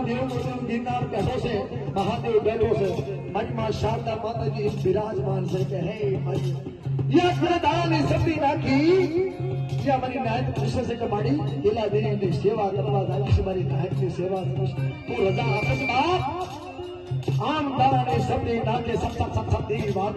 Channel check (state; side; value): identical; both; correlation 1.00